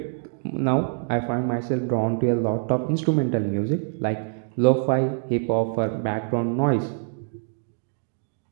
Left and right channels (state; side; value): silent; left; digital silence